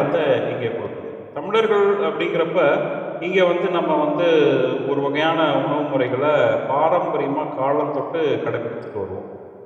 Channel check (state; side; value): identical; both; correlation 1.00